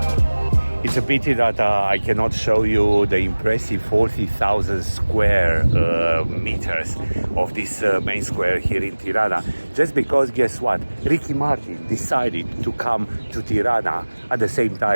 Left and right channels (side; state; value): both; inverted; correlation -1.00